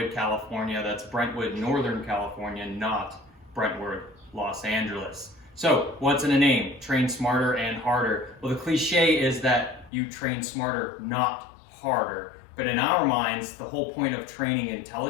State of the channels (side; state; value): right; drops out; at 9.9 s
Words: California. That's Brentwood, Northern California, not Brentwood, Los Angeles. So what's in a name? Train Smarter and Harder. Well, the cliche is that you train smarter, not harder. But in our minds, the whole point of training